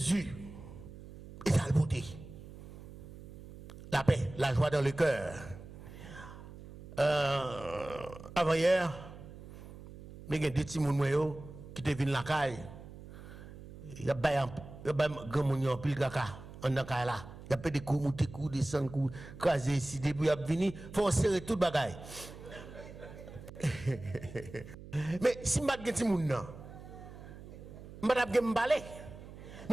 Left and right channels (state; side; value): noise; right; hum, 15 dB below the sound